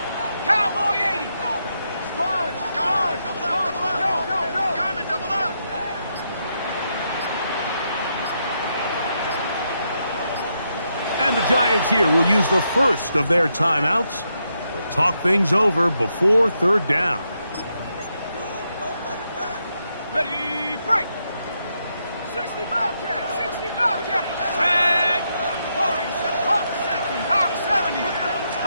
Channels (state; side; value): inverted; both; correlation -0.81